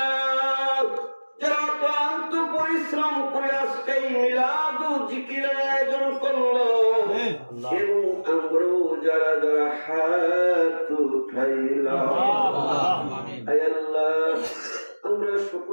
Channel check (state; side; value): inverted; both; correlation -1.00